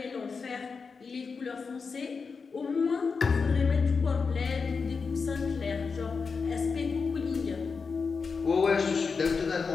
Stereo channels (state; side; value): quieter; right; 5.1 dB